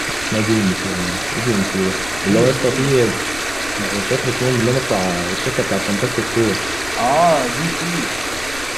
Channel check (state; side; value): noise; left; rumble, 15 dB below the sound